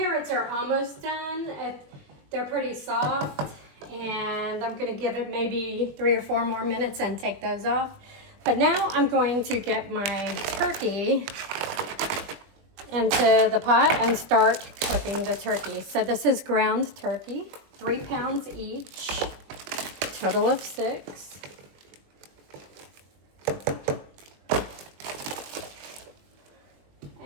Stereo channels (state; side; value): late; left; 20 ms